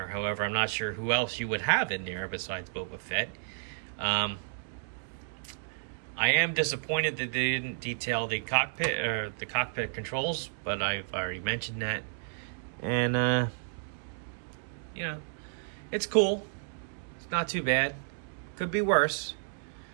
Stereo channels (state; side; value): silent; left; digital silence